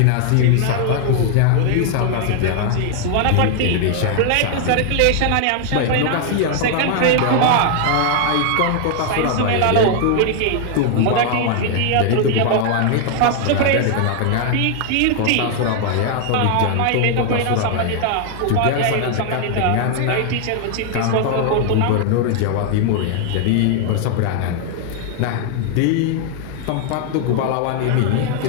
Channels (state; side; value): different; both; correlation 0.00